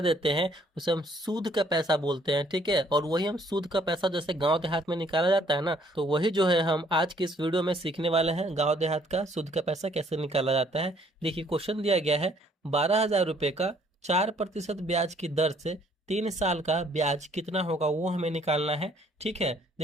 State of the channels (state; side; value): normal; both; correlation 0.62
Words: हैं उसे हम सूद का पैसा बोलते हैं, ठीक है। और वही हम सूद का पैसा जैसे गांव देहात में निकाला जाता है ना, तो वही जो है हम आज की इस वीडियो में सीखने वाले हैं। गाँव देहात का सूद का पैसा कैसे निकाला जाता है। देखिए, क्वेश्चन दिया गया है 12,000 रुपये का 4% ब्याज की दर से 3 साल का ब्याज कितना होगा, वो हमें निकालना है, ठीक है।